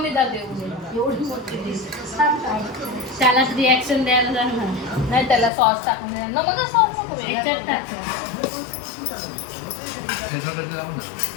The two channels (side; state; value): right; drops out; at 5.5 s